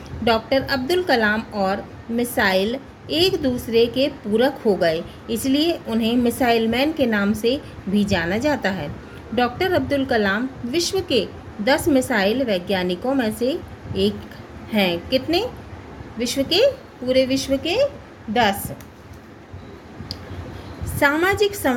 डॉक्टर अब्दुल कलाम और मिसाइल एक दूसरे के पूरक हो गए, इसलिए उन्हें मिसाइल मैन के नाम से भी जाना जाता है। डॉक्टर अब्दुल कलाम विश्व के 10 मिसाइल वैज्ञानिकों में से एक हैं। कितने? विश्व के, पूरे विश्व के 10। सामाजिक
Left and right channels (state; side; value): identical; both; correlation 1.00